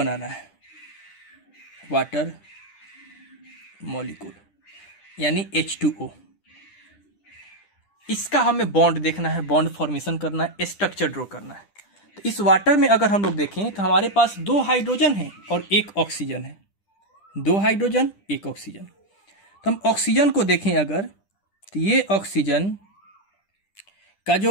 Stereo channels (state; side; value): late; right; 10 ms